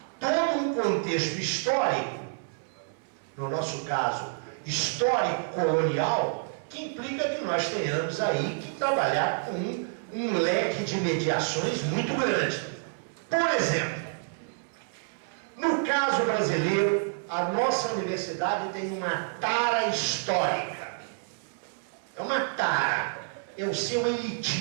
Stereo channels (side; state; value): left; silent; 59 dB below the other